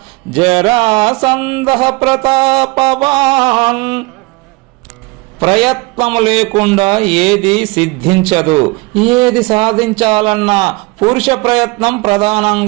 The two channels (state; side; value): quieter; left; 25.1 dB